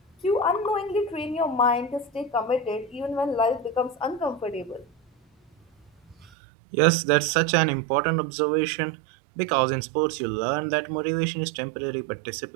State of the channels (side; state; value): left; drops out; at 6.3 s